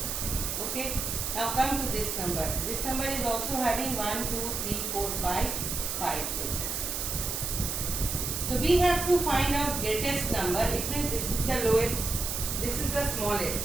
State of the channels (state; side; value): noise; right; hiss, 2 dB below the sound